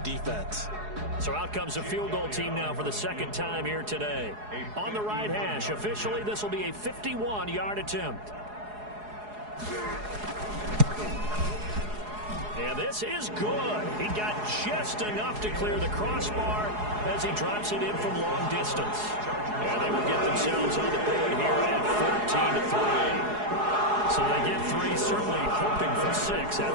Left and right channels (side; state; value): left; late; 4.8 ms